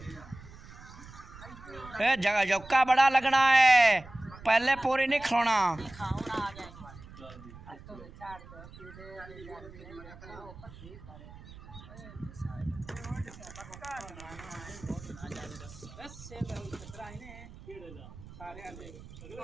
ए जगह जौका बड़ा लगना है, पहले पूरी नहीं खिलाना। बस से खतरा है ने सारे आले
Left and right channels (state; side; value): noise; right; rumble, 17 dB below the sound